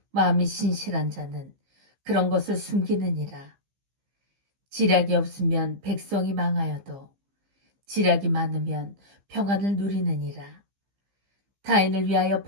마음이 신실한 자는 그런 것을 숨기느니라. 지략이 없으면 백성이 망하여도 지략이 많으면 평안을 누리느니라. 타인을 위하여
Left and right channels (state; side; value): late; left; 15 ms